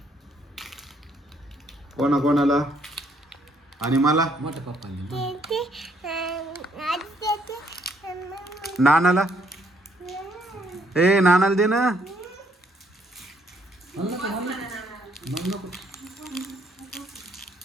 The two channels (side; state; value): both; normal; correlation 0.68